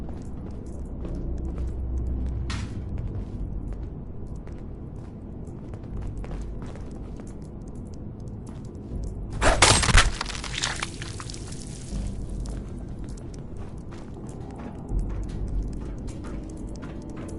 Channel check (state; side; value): identical; both; correlation 1.00